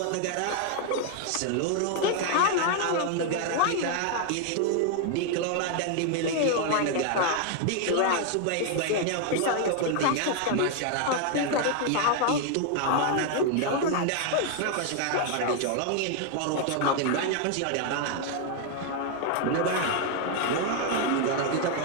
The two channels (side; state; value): both; different; correlation 0.00